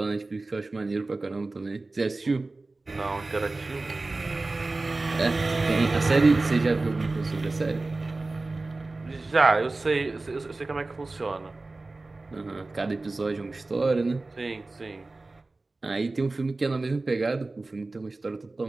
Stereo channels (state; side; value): quieter; left; 3.3 dB